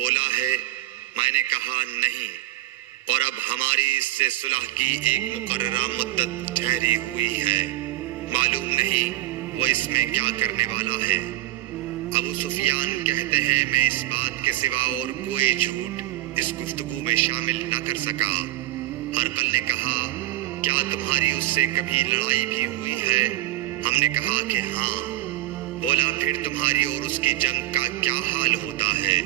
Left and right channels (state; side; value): quieter; left; 15.0 dB